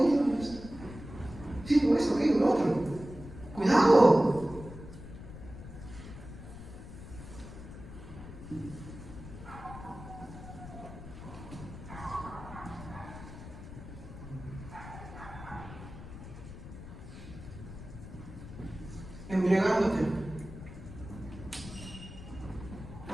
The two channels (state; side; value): noise; left; rumble, 13 dB below the sound